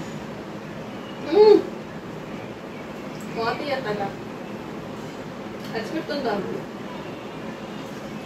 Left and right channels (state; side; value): identical; both; correlation 1.00